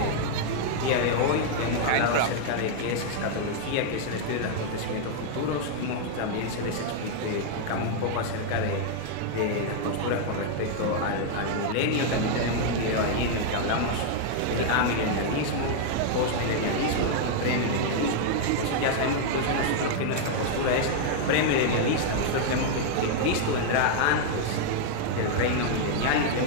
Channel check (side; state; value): both; different; correlation 0.00